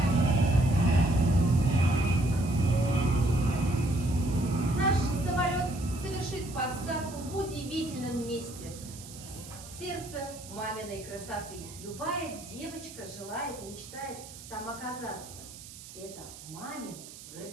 Наш самолет совершит посадку в удивительном месте. Сердце маминой красоты. Любая девочка желает и мечтает там оказаться. Это мамин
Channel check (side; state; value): right; noise; hiss, 15 dB below the sound